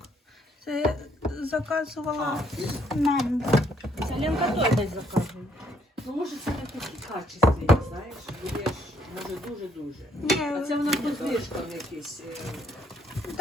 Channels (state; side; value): normal; both; correlation 0.68